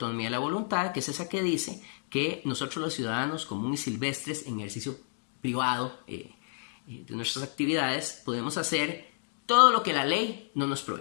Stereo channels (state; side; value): silent; right; digital silence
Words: de la voluntad, que es esa que dice que nosotros los ciudadanos comunes y silvestres, en ejercicio privado de nuestras actividades, podemos hacer todo lo que la ley no nos